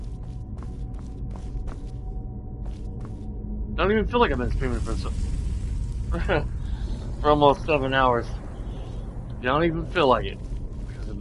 Don't even feel like I've been streaming for for almost 7 hours. Don't even feel like it, because I've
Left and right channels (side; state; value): both; identical; correlation 1.00